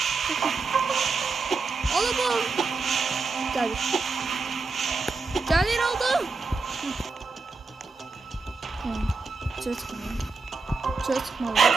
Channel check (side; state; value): left; quieter; 4.3 dB